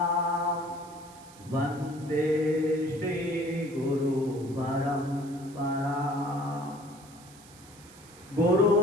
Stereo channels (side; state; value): right; noise; hiss, 22 dB below the sound